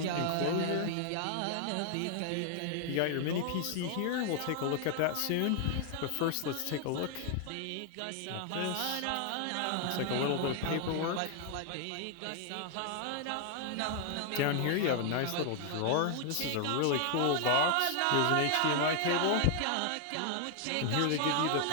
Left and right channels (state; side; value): different; both; correlation 0.00